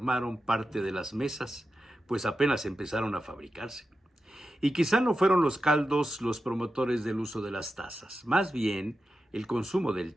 parte de las mesas, pues apenas empezaron a fabricarse. Y quizá no fueron los caldos los promotores del uso de las tazas, más bien el consumo del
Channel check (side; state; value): both; normal; correlation 0.91